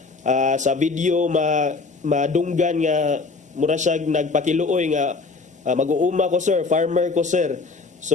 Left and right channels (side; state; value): right; quieter; 4.1 dB